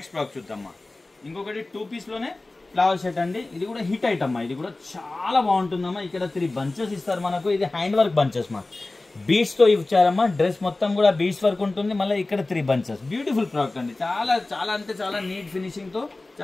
ప్రోడక్ట్ చూద్దామా. ఇంకొకటి 2 పీస్ లోనే ఫ్లవర్ సెట్ అండి. ఇది కూడా హిట్ ఐటమ్ మా. ఇది కూడా చాలా బాగుంటుందమ్మా. ఇక్కడ 3 బంచెస్ ఇస్తారు మనకు. ఇది హ్యాండ్ వర్క్ బంచెస్ మా. బీడ్స్ తో ఇచ్చారమ్మా. డ్రెస్ మొత్తం కూడా బీడ్స్ వర్క్ ఉంటుంది. మళ్ళీ ఇక్కడ 3 బంచెస్. బ్యూటిఫుల్ ప్రోడక్ట్ అండి. చాలా చాలా అంటే చాలా నీట్ ఫినిషింగ్ తో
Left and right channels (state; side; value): quieter; right; 3.0 dB